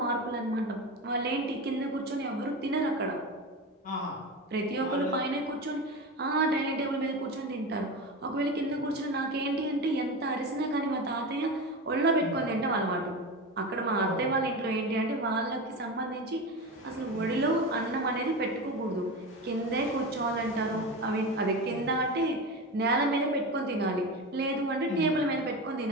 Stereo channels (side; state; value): both; normal; correlation 0.24